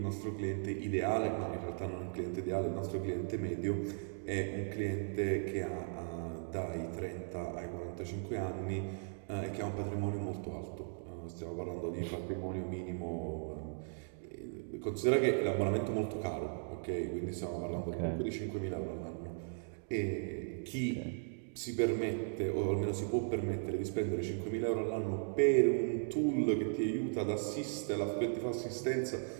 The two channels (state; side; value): silent; left; digital silence